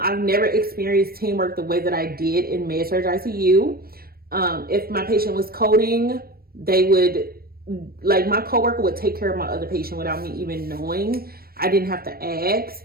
never experienced teamwork the way that I did in Med-Surg ICU. If my patient was coding, they would, like, my coworker would take care of my other patient without me even knowing. I didn't have to ask.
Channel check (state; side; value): late; left; 0.44 ms